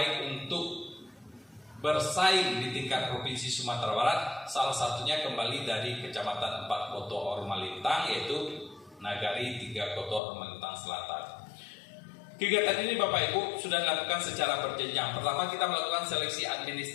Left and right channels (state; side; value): drops out; right; at 10.2 s